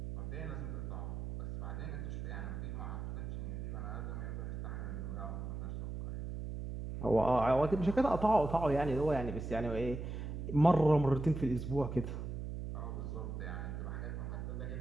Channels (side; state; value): right; noise; hum, 5 dB below the sound